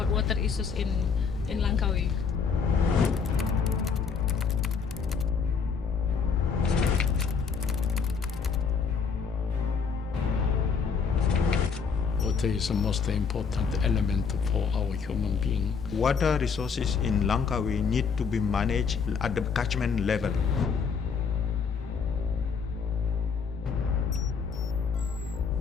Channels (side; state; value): right; quieter; 5.8 dB